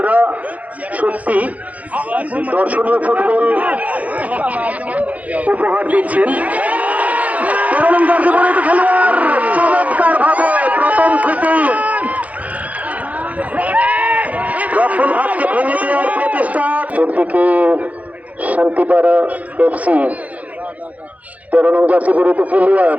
সত্যি দর্শনীয় ফুটবল উপহার দিচ্ছেন। খেলোয়াড় চমৎকার ভাবে প্রথম থেকেই রক্ষণ ভাগকে ভেঙে দেওয়ার প্রচেষ্টা। একদিকে শান্তিপাড়া এফসি 13 নং জার্সি পরিহিত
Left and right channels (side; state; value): left; late; 0.070 ms